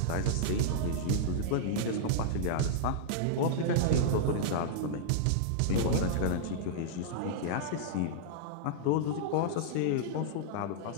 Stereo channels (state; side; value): different; both; correlation -0.02